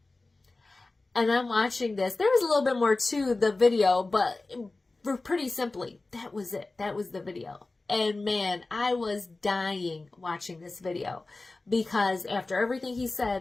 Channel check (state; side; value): quieter; right; 3.3 dB